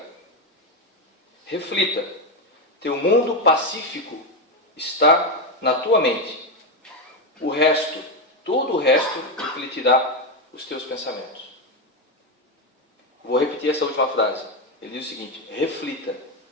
Reflita. Teu mundo pacífico está na tua mente. O resto, todo o resto, refletirá os teus pensamentos. Vou repetir essa última frase. Ele diz o seguinte: reflita.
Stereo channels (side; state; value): both; normal; correlation 0.09